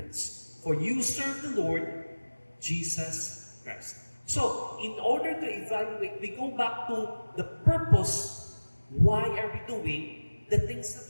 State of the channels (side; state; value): both; inverted; correlation -1.00